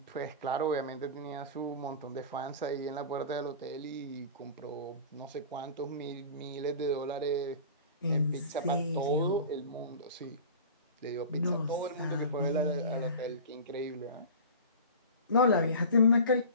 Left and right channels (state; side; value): inverted; both; correlation -0.35